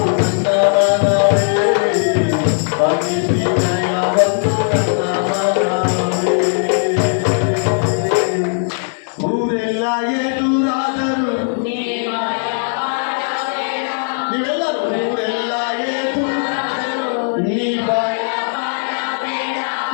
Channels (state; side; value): silent; right; digital silence